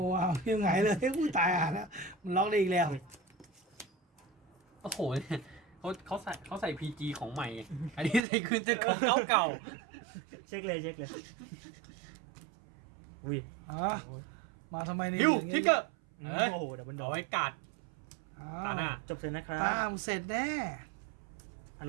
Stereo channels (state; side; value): drops out; left; at 8.2 s